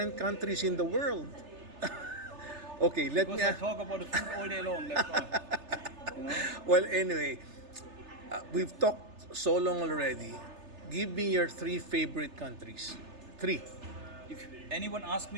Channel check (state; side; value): late; left; 3.3 ms